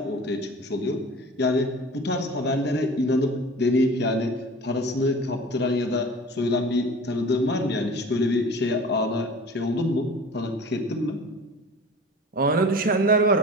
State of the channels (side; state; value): both; normal; correlation 0.41